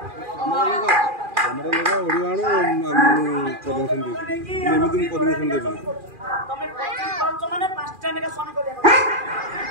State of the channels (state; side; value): late; left; 2.4 ms